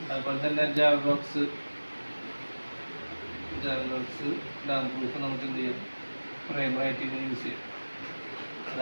അതുപോലെ തന്നെ ജാവബോക്സ് ഡാം പ്രൂഫ് നമുക്ക് എന്ത് ചെയ്യാം പ്രൈമറായിട്ട് ഇത് യൂസ് ചെയ്യാം.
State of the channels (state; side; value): inverted; both; correlation -1.00